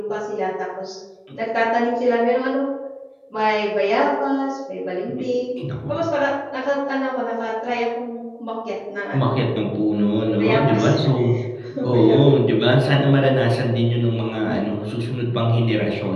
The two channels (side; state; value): both; identical; correlation 1.00